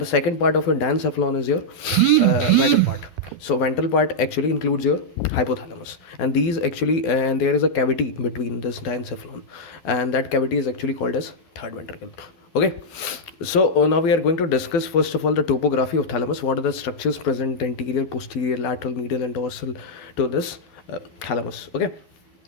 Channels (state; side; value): late; right; 12 ms